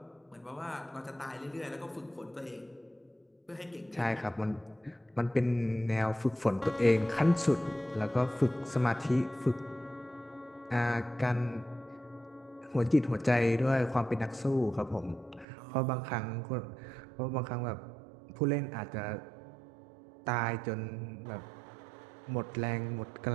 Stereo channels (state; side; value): drops out; left; at 15.5 s